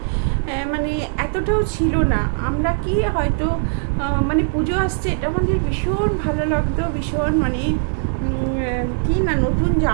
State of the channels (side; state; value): left; silent; digital silence